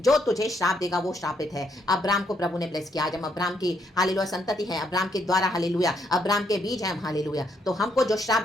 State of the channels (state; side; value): normal; both; correlation 0.74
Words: तुझे श्राप देगा वो श्रापित है। अब्राम को प्रभु ने ब्लेस किया। आज हम अब्राम की हालेलुया संतति है, अब्राम के द्वारा हालेलुया, अब्राम के बीज है हम, हालेलुया। तो हमको जो श्राप